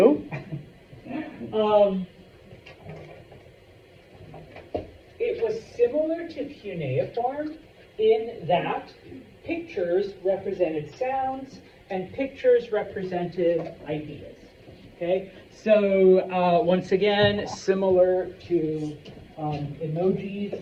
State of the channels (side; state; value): both; identical; correlation 1.00